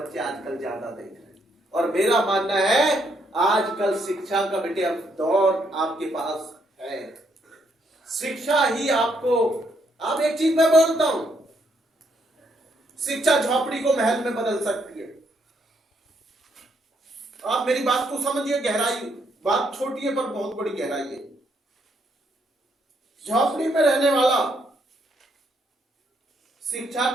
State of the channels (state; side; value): normal; both; correlation 0.74